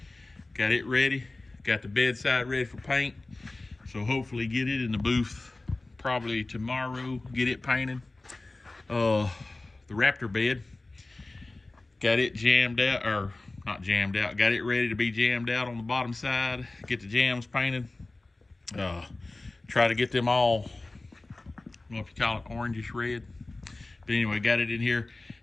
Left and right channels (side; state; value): right; quieter; 3.1 dB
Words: Got it ready. Got the bedside ready for paint. So hopefully get it in the booth probably tomorrow, get it painted. The Raptor bed, got it jammed out, or not jammed out, got it ready to be jammed out on the bottom side, get the jams painted. Try to get them all, I don't know if you call it orangish red. But anyway, got it in here.